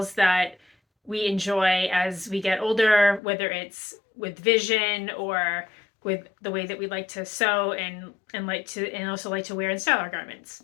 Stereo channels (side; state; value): right; drops out; at 3.2 s